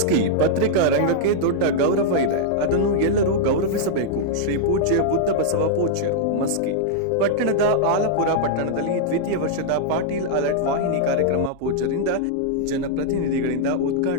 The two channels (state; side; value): different; both; correlation -0.02